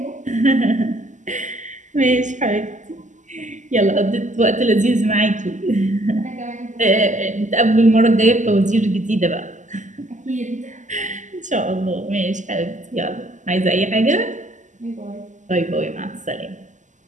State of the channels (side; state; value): left; late; 0.36 ms